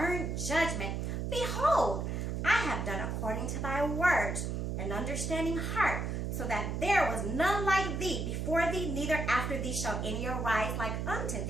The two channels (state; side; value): noise; right; hum, 2 dB below the sound